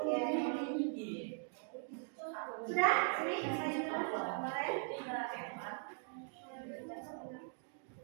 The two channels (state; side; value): silent; left; 51 dB below the other